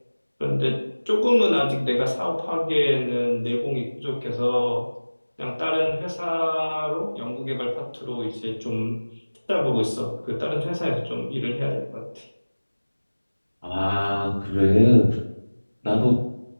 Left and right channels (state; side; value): inverted; both; correlation -1.00